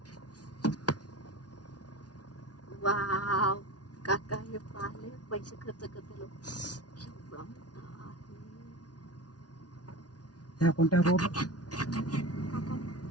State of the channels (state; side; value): late; right; 0.69 ms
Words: वाव काका हे पाहिले पैसे खर्च करते लोक. केवढा मोठा आहे. ह्या कोणत्या रोड